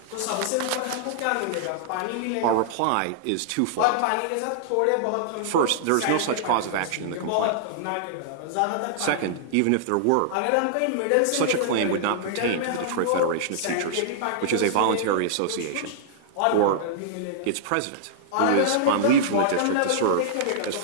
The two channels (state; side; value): different; both; correlation -0.01